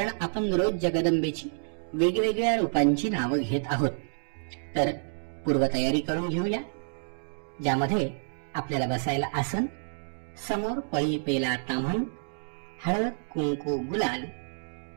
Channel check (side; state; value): left; silent; digital silence